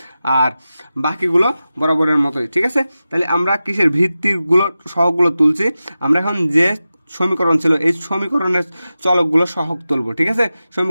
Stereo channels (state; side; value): inverted; both; correlation -0.94